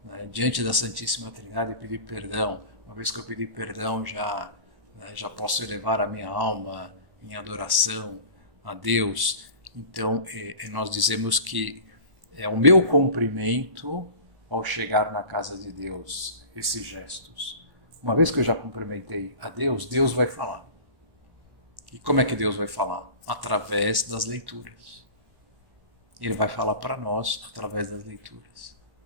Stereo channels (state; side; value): late; left; 1.1 ms